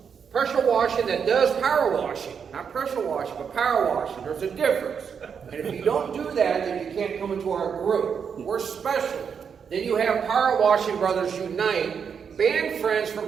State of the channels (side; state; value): left; quieter; 6.8 dB